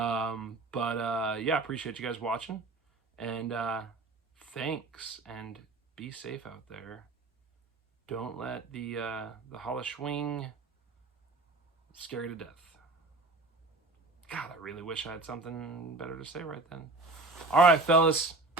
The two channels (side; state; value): left; quieter; 3.2 dB